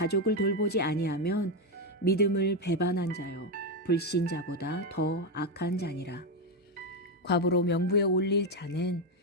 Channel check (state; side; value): normal; both; correlation 0.07